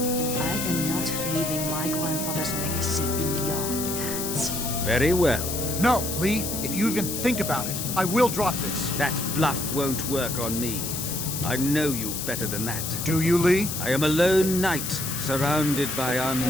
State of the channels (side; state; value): left; noise; hiss, 4 dB below the sound